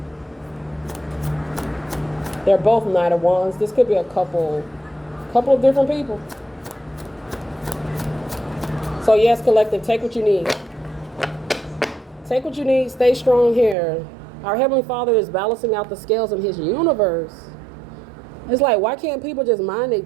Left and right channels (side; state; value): left; drops out; at 13.8 s